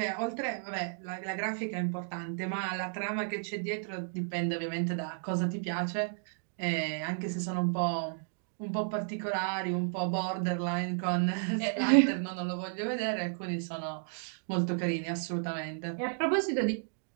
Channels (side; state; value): left; silent; digital silence